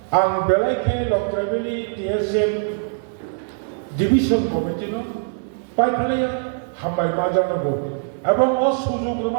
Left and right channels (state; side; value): silent; left; digital silence